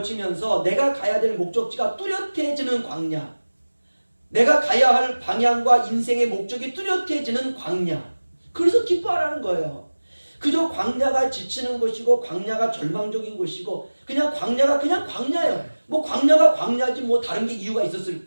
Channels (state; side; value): inverted; both; correlation -1.00